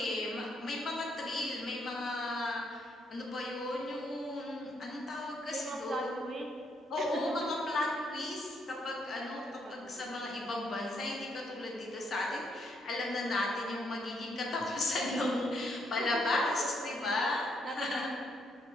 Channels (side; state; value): both; normal; correlation 0.74